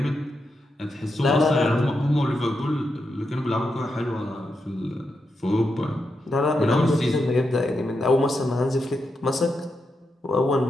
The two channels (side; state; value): both; normal; correlation 0.85